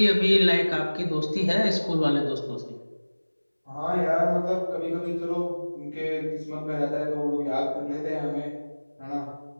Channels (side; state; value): both; inverted; correlation -1.00